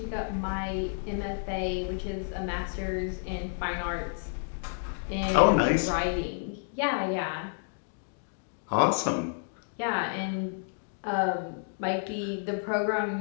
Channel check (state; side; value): silent; right; digital silence